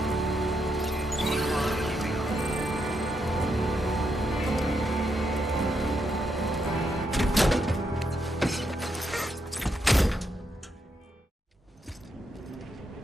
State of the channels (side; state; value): both; normal; correlation 0.80